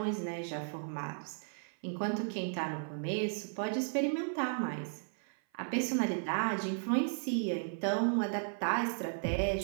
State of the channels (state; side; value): silent; left; 54 dB below the other